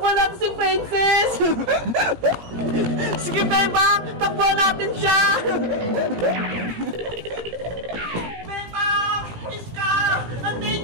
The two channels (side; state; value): left; late; 17 ms